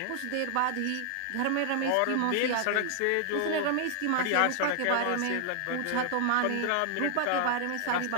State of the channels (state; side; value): different; both; correlation 0.00